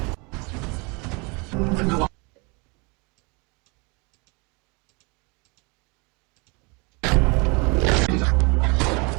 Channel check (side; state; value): left; quieter; 29.8 dB